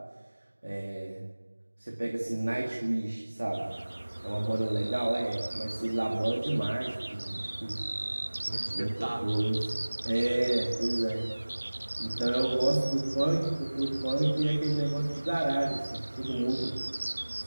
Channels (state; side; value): inverted; both; correlation -1.00